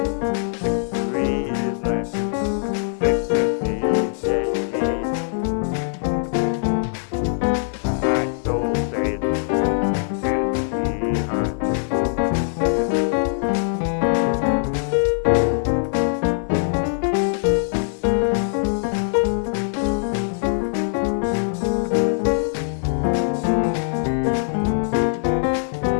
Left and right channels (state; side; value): silent; right; 64 dB below the other